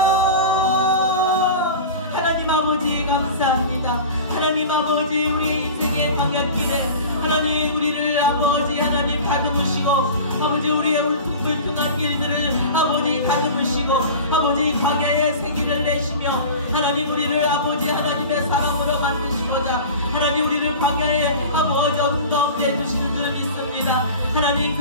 하나님 아버지 감사합니다. 하나님 아버지, 우리 인생의 광야길에 하나님 우리를 아버지 하나님 다듬으시고 아버지 우리의 울퉁불퉁한 길들을 아버지 다듬으시고 아버지 광야의 생기를 내시며 하나님 우리를 아버지 하나님의 사랑으로 만드시고자 하나님 우리를 광야의 아버지 어둠 가운데 두시는 줄 믿습니다. 하나님,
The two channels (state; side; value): inverted; both; correlation -0.35